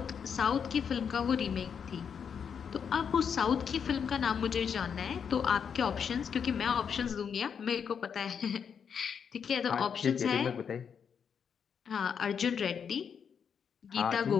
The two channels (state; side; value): quieter; right; 7.1 dB